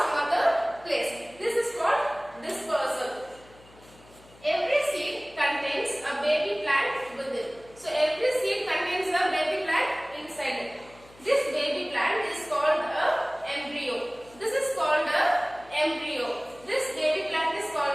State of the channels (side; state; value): left; noise; hum, 25 dB below the sound